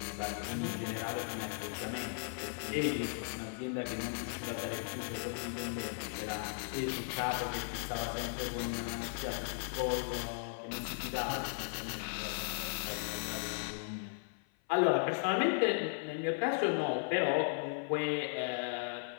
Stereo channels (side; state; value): right; silent; 53 dB below the other